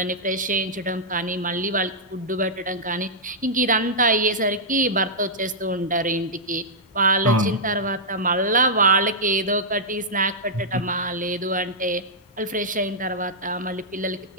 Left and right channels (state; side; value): normal; both; correlation -0.10